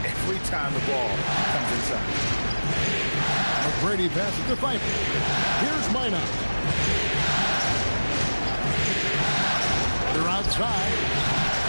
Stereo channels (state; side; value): inverted; both; correlation -1.00